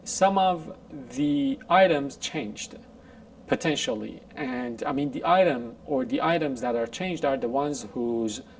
some of the items changed, potentially. And the item or the items that are changed are the ones whose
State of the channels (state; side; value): identical; both; correlation 1.00